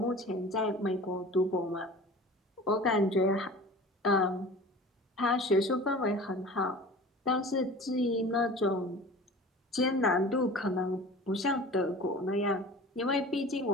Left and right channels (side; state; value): both; normal; correlation 0.40